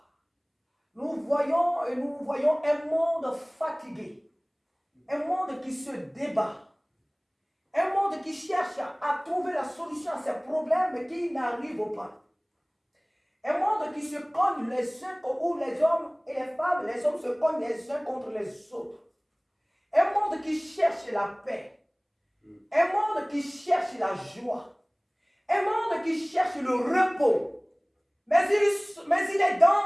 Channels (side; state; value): both; identical; correlation 1.00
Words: Nous voyons un monde fatigué. Un monde qui se débat. Un monde qui cherche à trouver la solution à ses problèmes mais qui n'arrive pas. Un monde qui se cogne les uns, où les hommes et les femmes, les hommes se cognent les uns contre les autres. Un monde qui cherche la paix. Un monde qui cherche la joie. Un monde qui cherche le repos. Mais il est